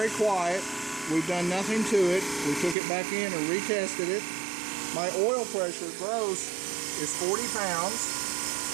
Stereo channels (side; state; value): left; drops out; at 2.8 s